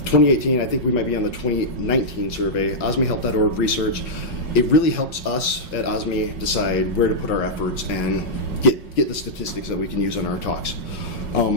I think we might be on the 2019 survey, osmehelp.org research. It really helps us at OSME decide where to put our efforts and get the statistics that we can use on our talks.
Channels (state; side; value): late; right; 5.5 ms